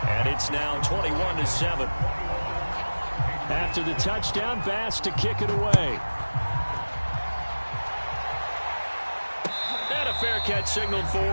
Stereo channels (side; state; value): both; inverted; correlation -1.00